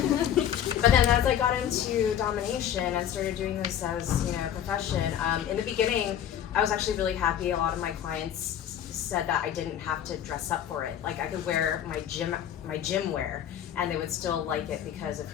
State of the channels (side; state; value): right; quieter; 10.1 dB